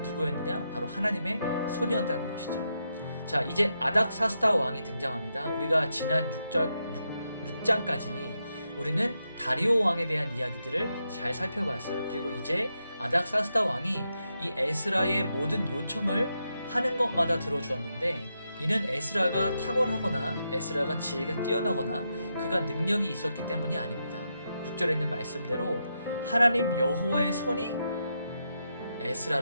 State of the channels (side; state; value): both; inverted; correlation -0.84